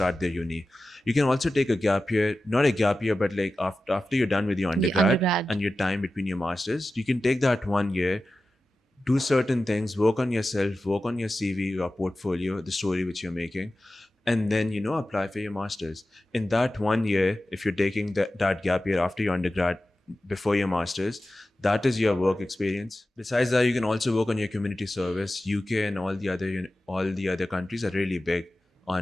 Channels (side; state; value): both; normal; correlation 0.94